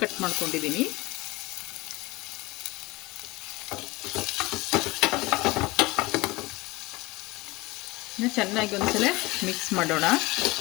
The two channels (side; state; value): right; quieter; 22.3 dB